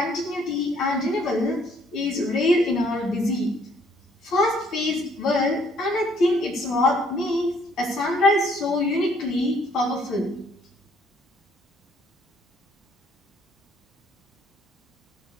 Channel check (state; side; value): normal; both; correlation 0.64